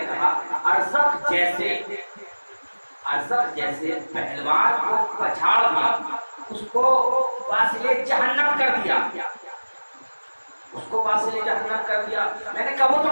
کہا ارزق جیسے پہلوان کو پچھاڑ دیا، اس کو واصل جہنم کر دیا، اس کو واصل جہنم کر دیا، میں نے کہا وہ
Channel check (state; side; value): inverted; both; correlation -1.00